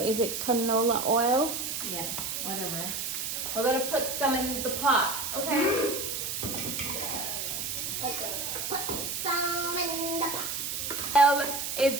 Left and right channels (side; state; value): right; noise; hiss, 3 dB below the sound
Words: Is it canola oil? Yeah, whatever. We're gonna put some in the pot, okay? Okay. Put some in the pot. Oil is